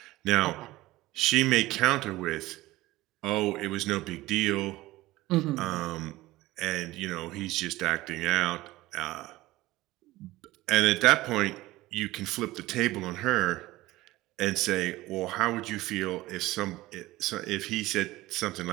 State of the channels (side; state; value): left; quieter; 18.1 dB